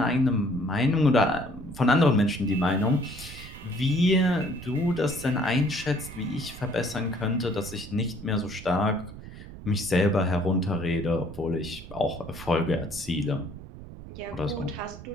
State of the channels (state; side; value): noise; right; rumble, 14 dB below the sound